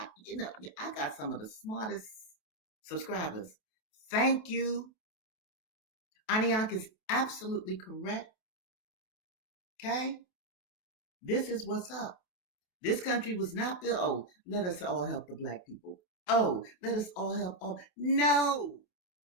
got some of the smartest subscribers. Thank you. Aniak is absolutely correct. Okay? This is what's up. This country was not built, oh, let us all help the black people. Oh, let us all help all. No.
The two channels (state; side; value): late; right; 28 ms